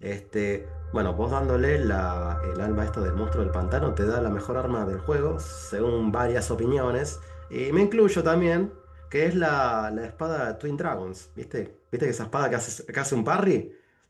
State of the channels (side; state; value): both; identical; correlation 1.00